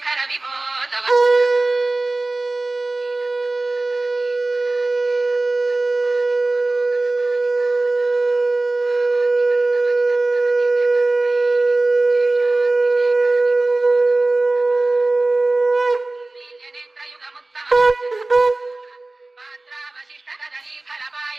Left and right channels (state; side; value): quieter; left; 3.0 dB